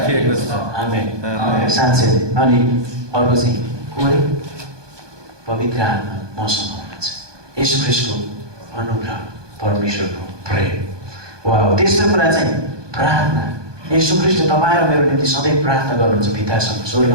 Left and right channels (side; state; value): left; late; 1.2 ms